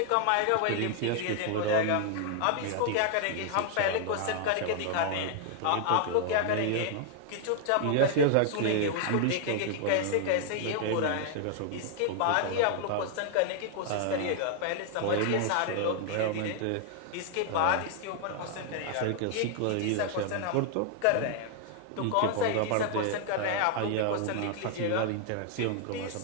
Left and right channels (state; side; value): different; both; correlation 0.00